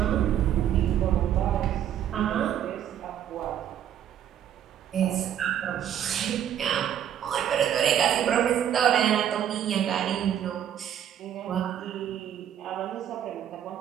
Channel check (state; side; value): quieter; left; 10.1 dB